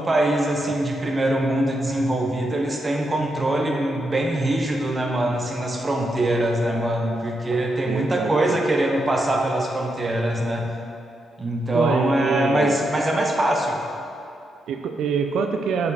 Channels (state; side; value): normal; both; correlation 0.83